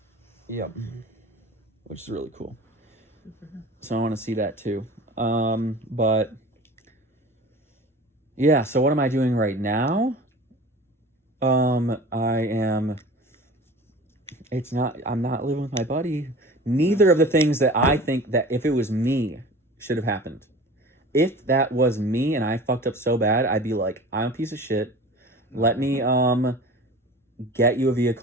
yep. Which is really cool. So I want to see that too. But yeah, so what am I doing right now? I'm not living with my buddy. Neither of the things that I think that if it was me should have happened. If that was me and I fucked up so bad, I'd be like, I'm a piece of shit. Let me get you a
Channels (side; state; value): both; normal; correlation 0.39